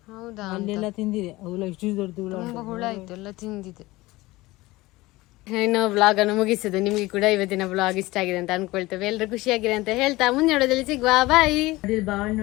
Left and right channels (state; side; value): quieter; right; 20.0 dB